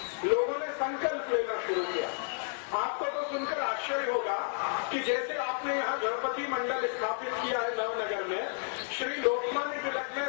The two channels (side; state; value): right; silent; 57 dB below the other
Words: लोगों ने संकल्प लेना शुरू किया। आपको तो सुनकर आश्चर्य होगा कि जैसे आपने यहाँ गणपति मंडल स्थापित किया है नवनगर में, श्री लोकमान्य तिलक ने